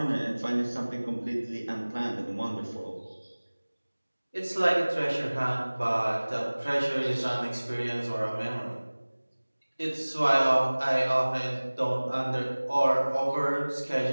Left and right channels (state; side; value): inverted; both; correlation -1.00